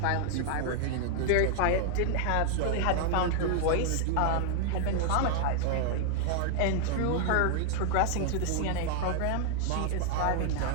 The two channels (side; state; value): both; different; correlation 0.00